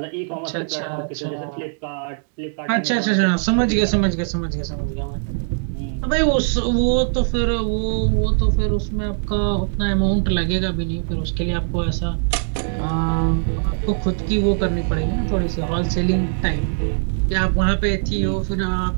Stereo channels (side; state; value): left; silent; digital silence